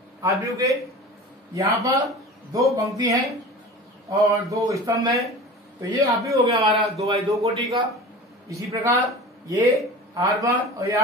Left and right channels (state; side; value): normal; both; correlation 0.36